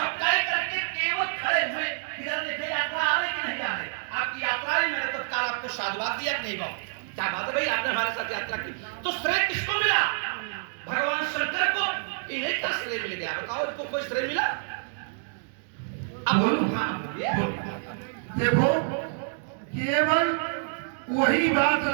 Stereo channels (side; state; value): left; silent; digital silence